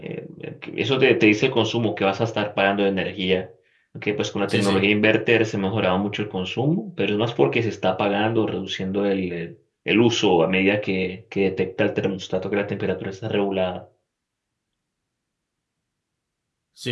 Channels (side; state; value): both; identical; correlation 1.00